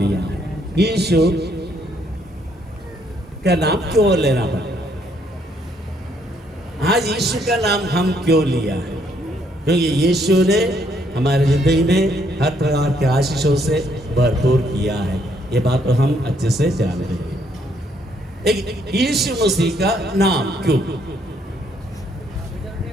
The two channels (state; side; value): normal; both; correlation 0.70